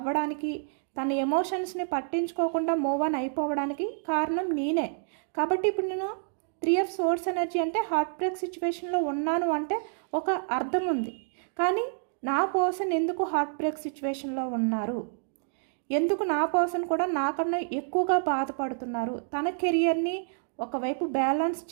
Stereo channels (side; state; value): left; silent; digital silence